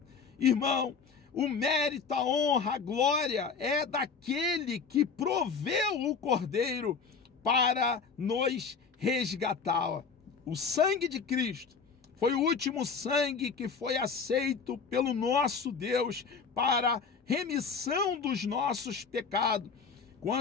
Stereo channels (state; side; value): quieter; right; 5.5 dB